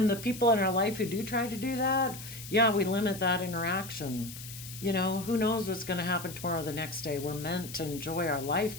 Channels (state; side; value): noise; left; hiss, 12 dB below the sound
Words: the people in our life who do try to do that, yeah, we limit that interaction. You know, who knows what's going to happen tomorrow or the next day? We're meant to enjoy our